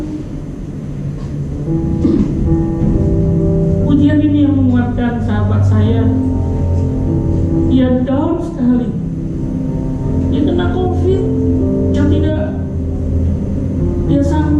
Pujian ini yang menguatkan sahabat saya. Dia down sekali. Dia kena COVID yang tidak dia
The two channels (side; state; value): both; identical; correlation 1.00